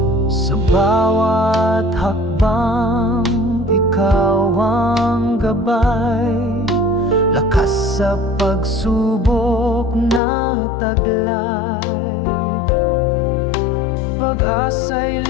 Bawat hakbang, Ikaw ang gabay. Lakas sa pagsubok na taglay. Pag-asa'y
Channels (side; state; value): right; drops out; at 10.2 s